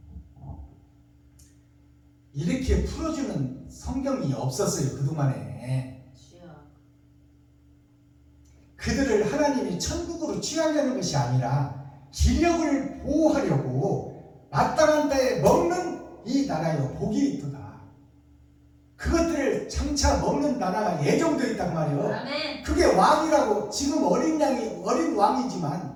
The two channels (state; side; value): identical; both; correlation 1.00